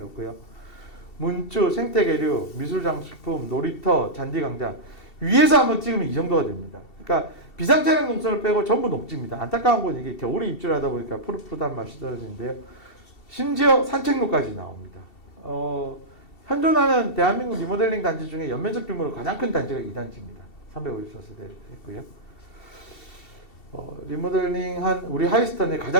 문주, 생태계류, 미술장식품, 놀이터, 잔디광장 위에서 한번 찍으면 이 정도가 됩니다. 그러니까 비상차량 동선을 빼고 전부 녹지입니다. 안타까운 건 이게 겨울에 입주를 하다 보니까 푸릇푸릇한 맛이 떨어지는데요. 심지어 산책로까지 나옵니다. 현존하는 대한민국 리모델링 단지 중에 연면적 규모로 가장 큰 단지가 이 단지입니다. 354세대 있고요. 리모델링한 우리 하이스턴의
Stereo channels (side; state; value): right; late; 2.7 ms